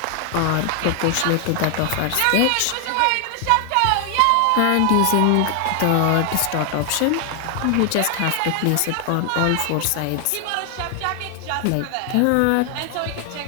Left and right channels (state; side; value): different; both; correlation 0.00